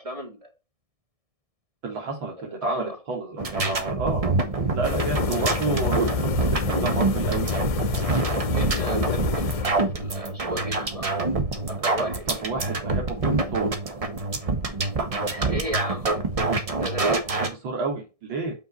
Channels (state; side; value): late; left; 1.7 ms